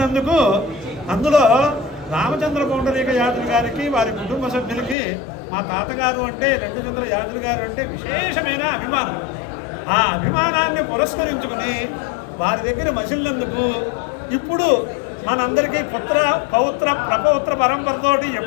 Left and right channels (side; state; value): right; drops out; at 5.0 s